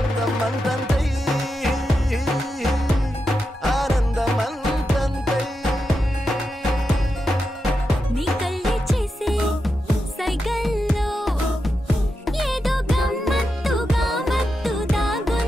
అంతంతై ఆనందం అంతంతై నీ కళ్ళే చేసే సైగల్లో ఏదో గమ్మత్తుగా మత్తు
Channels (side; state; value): both; normal; correlation 0.88